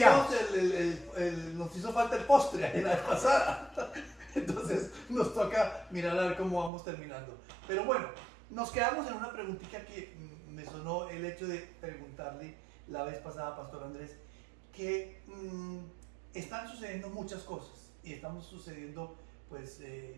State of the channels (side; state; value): left; drops out; at 6.7 s